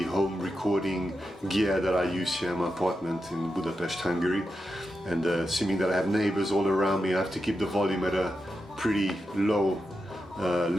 home recording gear that I use here in my apartment in Budapest, Hungary. And assuming that I have neighbors all around me, I have to keep the volume at a pretty low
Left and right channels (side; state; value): both; normal; correlation 0.88